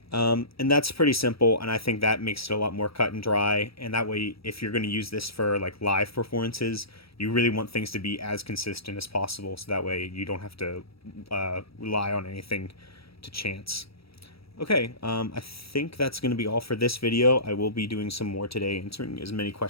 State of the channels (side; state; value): right; late; 0.76 ms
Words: And that's pretty simple, and I think that makes it a lot more cut and dry. And that way, if you're going to use this for like live performances, you really want things to be as consistent as possible, so that way you don't have to rely on anything to chance. Okay, I think that's going to be all for this video. I will be doing some more today, answering as many